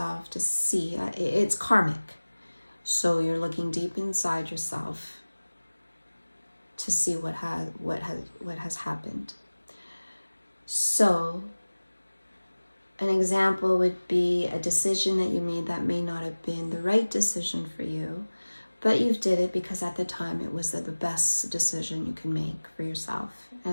to see, it's karmic. So you're looking deep inside yourself to see what has happened. So an example would be a decision that you made that may not have been the right decision for you, but you did it because at the time it was the best decision you can make for yourself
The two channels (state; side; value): inverted; both; correlation -1.00